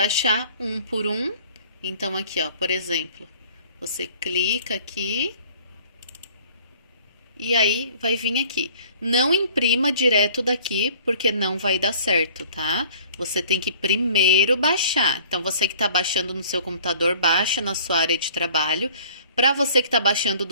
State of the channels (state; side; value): inverted; both; correlation -0.50